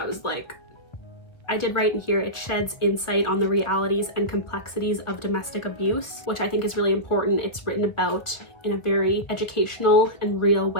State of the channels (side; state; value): right; late; 1.1 ms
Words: was like, I did write in here, it sheds insight on the realities and complexities of domestic abuse, which I think is really important. It's written about in a very educational and real